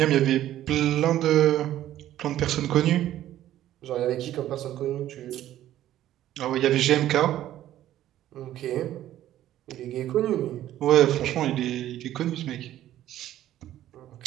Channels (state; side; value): quieter; left; 12.9 dB